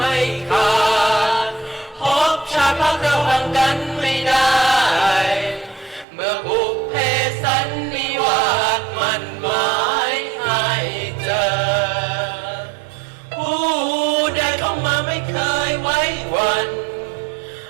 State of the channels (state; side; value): drops out; left; at 6.1 s